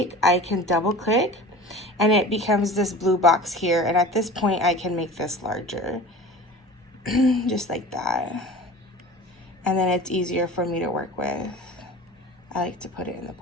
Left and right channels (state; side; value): normal; both; correlation 0.37